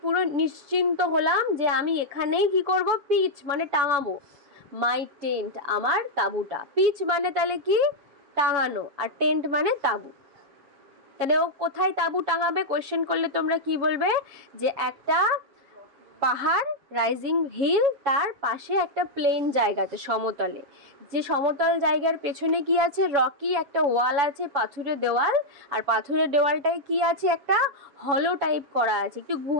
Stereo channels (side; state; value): left; late; 7.2 ms